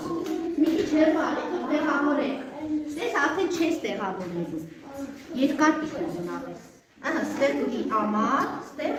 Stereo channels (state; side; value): identical; both; correlation 1.00